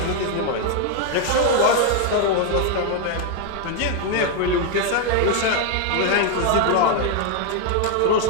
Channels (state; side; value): different; both; correlation 0.01